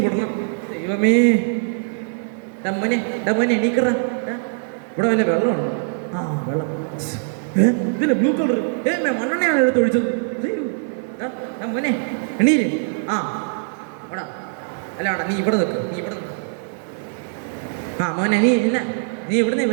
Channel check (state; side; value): silent; left; 61 dB below the other